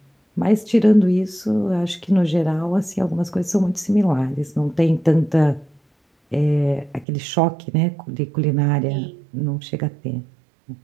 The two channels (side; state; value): left; drops out; at 7.1 s